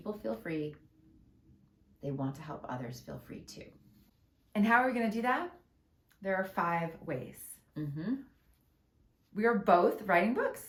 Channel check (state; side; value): identical; both; correlation 1.00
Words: feel free, they want to help others feel free too. And how are we going to do that? There are 5 ways. We are both writing